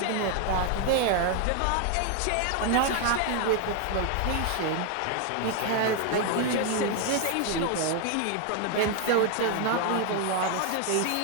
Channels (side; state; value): both; different; correlation 0.01